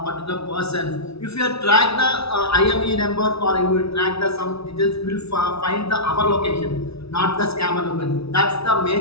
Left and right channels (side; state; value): right; late; 0.78 ms